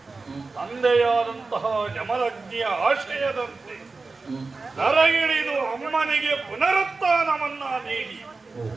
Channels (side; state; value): left; quieter; 3.9 dB